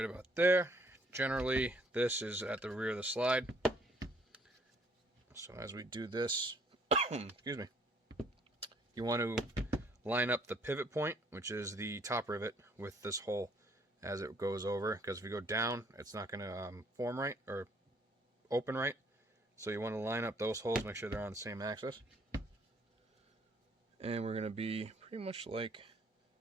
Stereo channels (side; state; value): both; normal; correlation 0.63